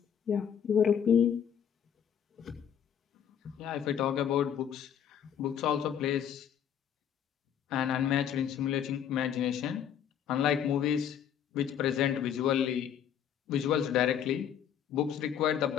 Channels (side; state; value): right; quieter; 8.9 dB